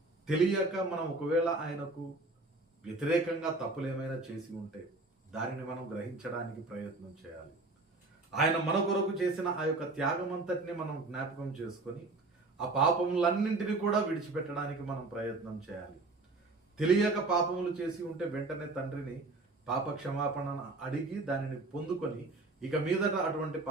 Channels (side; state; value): left; quieter; 3.2 dB